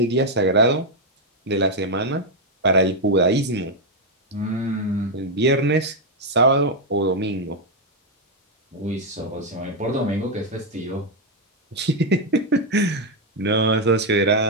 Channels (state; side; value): normal; both; correlation 0.01